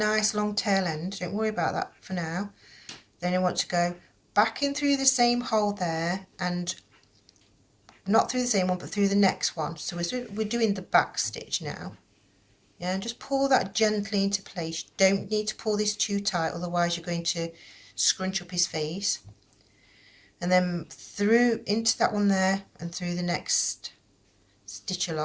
long tail end, don't worry about that for now. Then I want to go back in through the same hole there, and not through the same one but through the next one. So we're doing the back stitch now. Yeah, and just pull that gently into place. You don't need to pull this too tight, otherwise you're going to scrunch up his face. And then through into that one there, and through the next stitch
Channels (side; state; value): both; identical; correlation 1.00